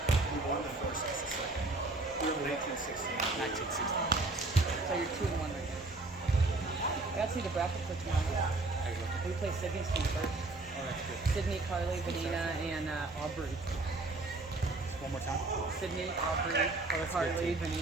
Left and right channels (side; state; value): left; quieter; 3.1 dB